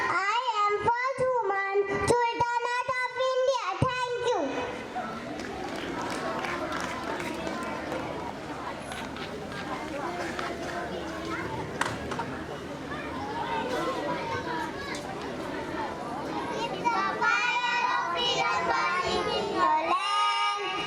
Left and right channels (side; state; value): both; identical; correlation 1.00